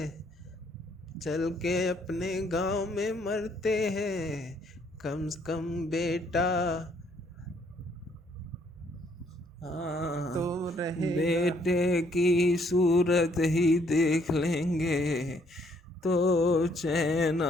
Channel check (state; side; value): normal; both; correlation 0.67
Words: चल के अपने गांव में मरते हैं, कम से कम बेटा हाँ, तो रहेगा। बेटे की सूरत ही देख लेंगे तो चैन